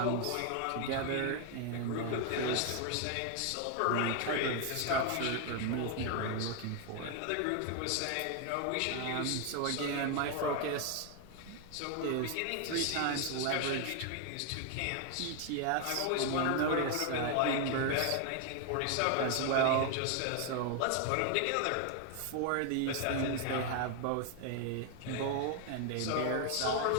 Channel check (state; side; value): different; both; correlation 0.01